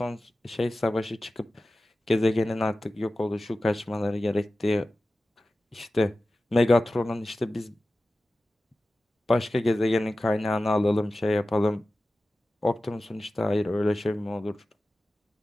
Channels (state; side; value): normal; both; correlation 0.95